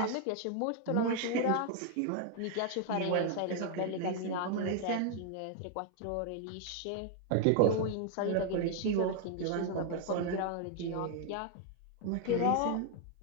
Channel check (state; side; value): different; both; correlation 0.00